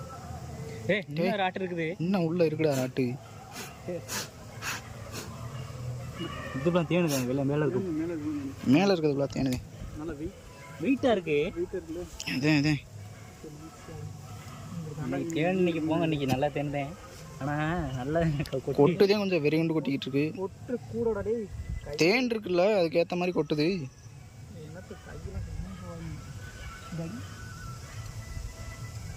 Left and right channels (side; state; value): both; identical; correlation 1.00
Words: இன்னும் ராட்டு இருக்குது. இன்னும் உள்ள இருக்குடா ராட்டு. இதுலாம் தேனுதாங்க வெளில மேலே இருக்கு. மேலே இருக்கிறதுக்குள்ள தேனுதே. நல்லா வெயிட்டாக இருக்கு. அதே தேன் இன்னைக்கு போங்க. இன்னைக்கு நல்லா தேன்தேன். ஆனால் நல்லா கொட்டுதே கொஞ்சம் வெறி கொண்டு கொட்டிக்கிட்டு இருக்கு. கொட்டு கூடோட தேன் இருக்குல்ல அதுக்கேற்ற மாதிரி கொட்டுது.